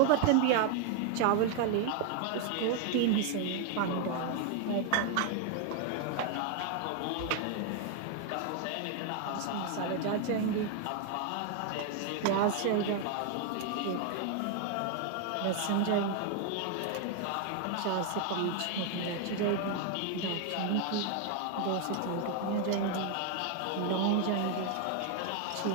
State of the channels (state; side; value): different; both; correlation 0.01